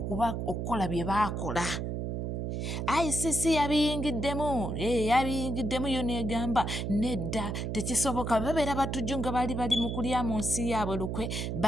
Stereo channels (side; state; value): right; noise; hum, 2 dB below the sound